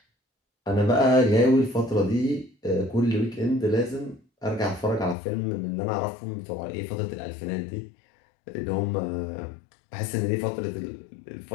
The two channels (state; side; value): drops out; right; at 5.2 s